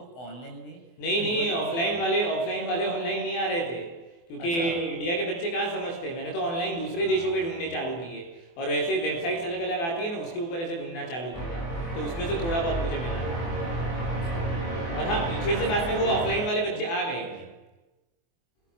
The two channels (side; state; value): right; late; 24 ms